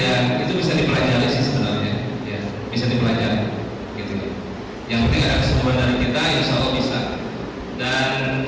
itu bisa dipelajari sih sebenarnya ya, bisa dipelajari gitu ya. Yang penting ada kesempatan dari kita, insya Allah bisa. Dan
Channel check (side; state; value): both; identical; correlation 1.00